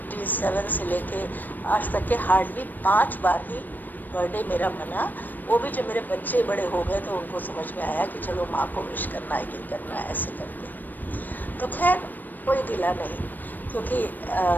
से लेके आज तक के हार्डली 5 बार ही बर्थडे मेरा मना। वो भी जब मेरे बच्चे बड़े हो गए तो उनको समझ में आया कि चलो माँ को विश करना है, ये करना है, ऐसे करके। तो खैर कोई गिला नहीं, क्योंकि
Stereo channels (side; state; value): right; late; 0.088 ms